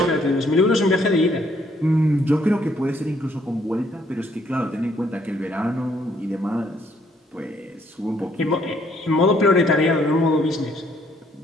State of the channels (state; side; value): normal; both; correlation 0.67